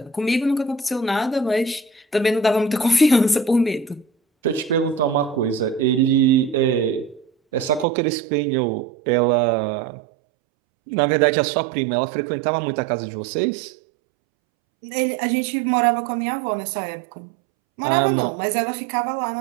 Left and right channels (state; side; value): drops out; left; at 7.9 s